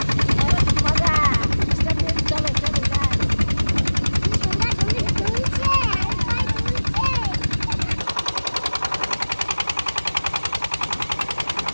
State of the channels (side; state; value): both; inverted; correlation -1.00